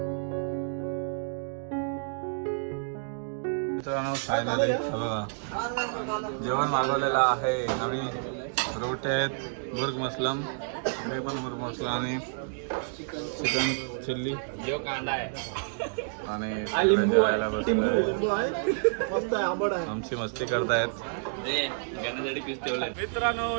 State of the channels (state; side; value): silent; left; digital silence